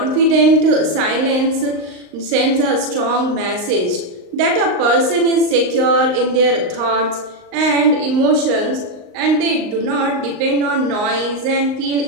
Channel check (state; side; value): late; left; 38 ms